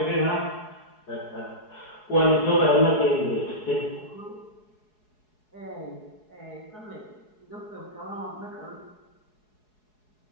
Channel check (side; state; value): right; late; 4.7 ms